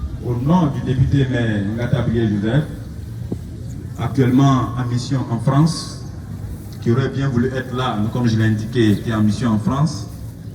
au nom du député maire Ngatabrié Joseph, actuellement en mission en France, qui aurait bien voulu être là, comme je l'ai indiqué, qui est en mission en France,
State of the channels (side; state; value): both; identical; correlation 1.00